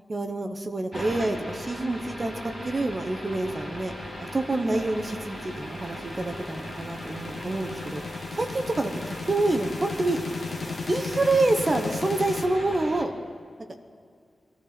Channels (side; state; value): both; normal; correlation 0.91